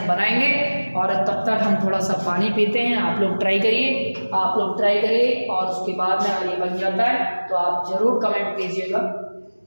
बनाएंगे। और तब तक हम थोड़ा सा पानी पीते हैं। आप लोग ट्राई करिए, और उसके बाद में अगर ये बन जाता है तो आप जरूर कमेंट कीजिएगा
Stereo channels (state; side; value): inverted; both; correlation -1.00